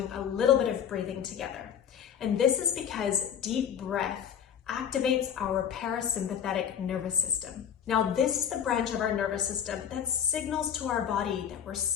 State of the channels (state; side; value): quieter; right; 8.7 dB